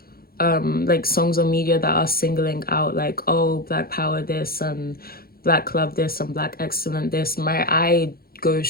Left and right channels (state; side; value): late; right; 0.44 ms